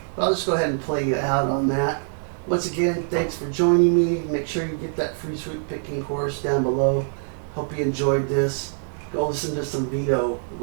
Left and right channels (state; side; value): silent; left; digital silence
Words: But I'll just go ahead and play you out on that. Once again, thanks for joining me. Make sure you get that free sweet picking course down below. Hope you enjoyed this. Go listen to some Vito.